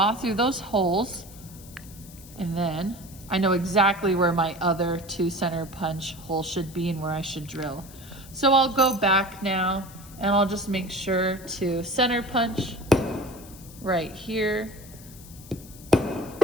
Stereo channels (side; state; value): left; noise; hiss, 19 dB below the sound